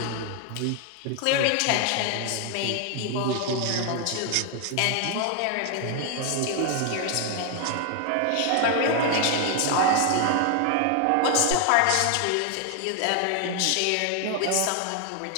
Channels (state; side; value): different; both; correlation 0.01